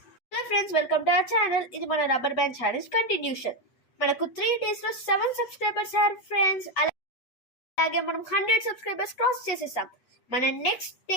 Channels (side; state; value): right; late; 8.4 ms